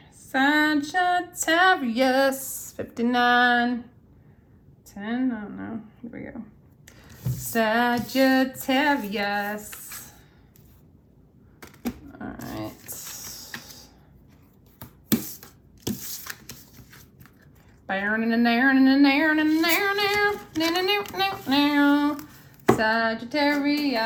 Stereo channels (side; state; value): both; identical; correlation 1.00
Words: 59, 10, I don't know, here we go. Sagittarius. All right.